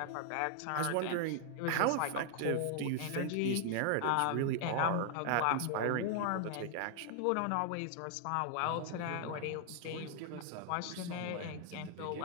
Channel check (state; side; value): different; both; correlation 0.00